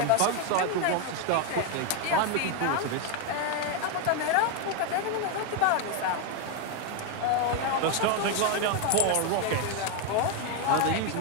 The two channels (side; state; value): both; different; correlation 0.01